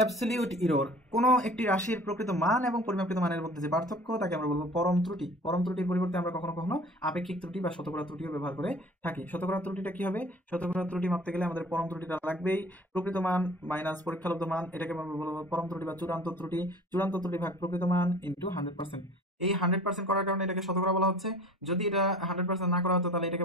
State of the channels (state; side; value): normal; both; correlation 0.45